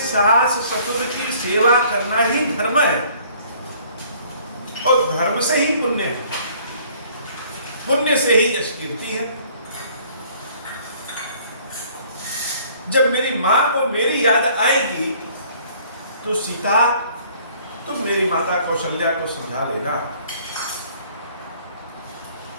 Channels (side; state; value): both; inverted; correlation -0.57